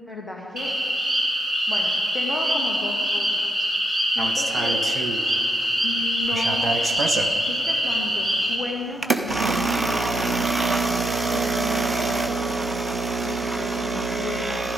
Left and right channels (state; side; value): normal; both; correlation 0.78